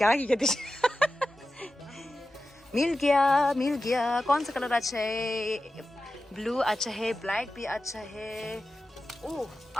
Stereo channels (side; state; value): both; normal; correlation 0.93